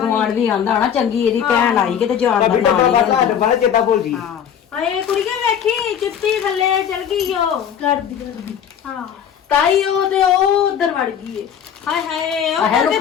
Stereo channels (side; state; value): right; quieter; 8.6 dB